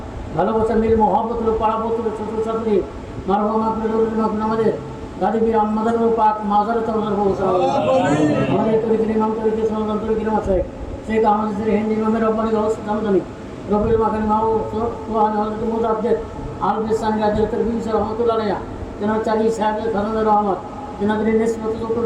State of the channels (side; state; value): both; identical; correlation 1.00